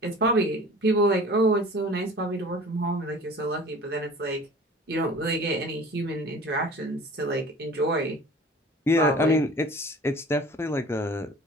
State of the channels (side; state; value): both; normal; correlation 0.43